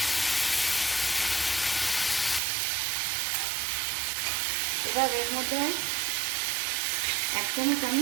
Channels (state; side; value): drops out; left; at 2.4 s